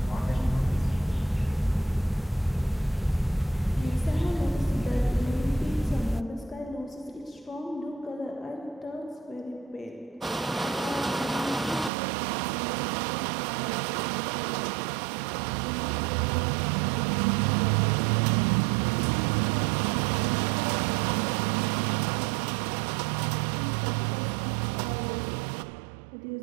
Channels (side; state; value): left; drops out; at 11.9 s